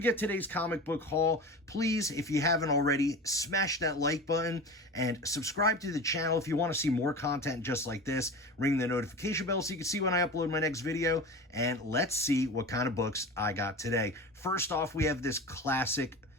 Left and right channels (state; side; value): normal; both; correlation 0.31